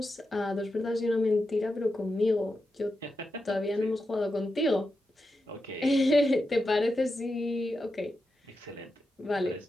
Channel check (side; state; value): both; normal; correlation 0.89